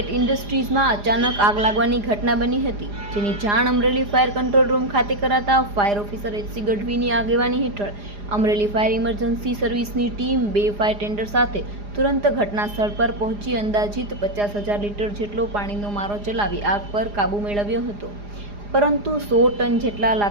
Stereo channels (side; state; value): left; late; 4.9 ms